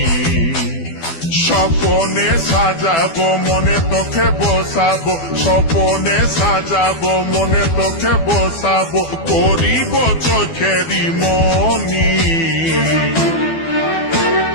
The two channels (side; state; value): right; late; 12 ms